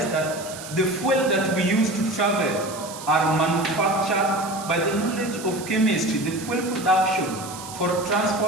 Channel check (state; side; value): noise; right; hiss, 13 dB below the sound